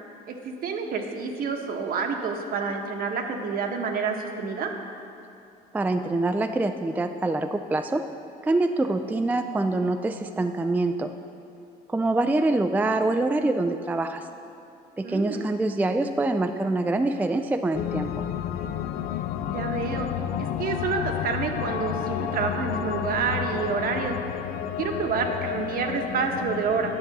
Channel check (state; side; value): normal; both; correlation 0.57